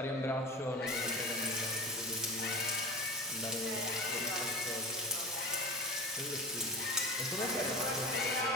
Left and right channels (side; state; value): both; normal; correlation 0.31